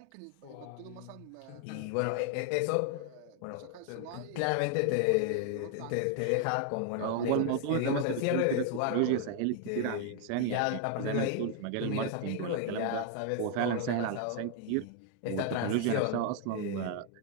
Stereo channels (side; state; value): both; different; correlation 0.00